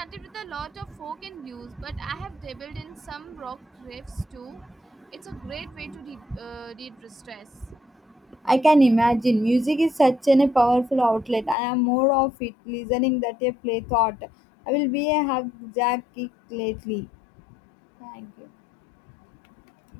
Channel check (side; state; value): right; drops out; at 11.6 s